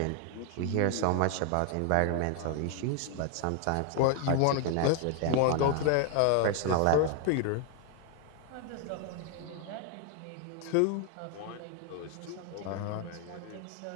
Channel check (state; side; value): different; both; correlation 0.01